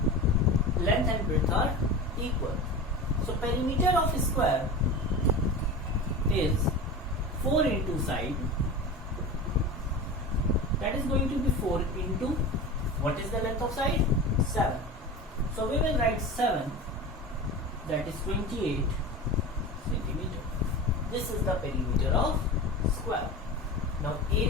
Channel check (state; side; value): normal; both; correlation 0.30